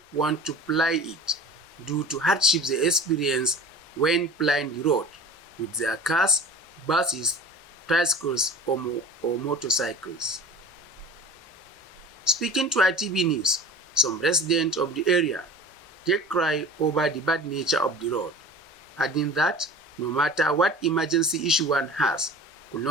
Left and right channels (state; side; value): normal; both; correlation 0.39